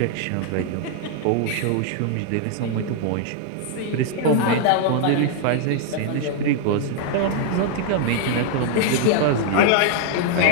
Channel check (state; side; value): different; both; correlation -0.01